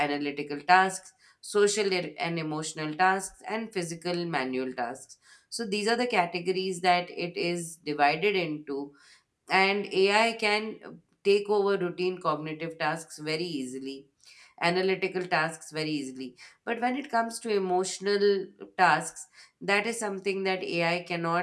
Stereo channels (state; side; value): identical; both; correlation 1.00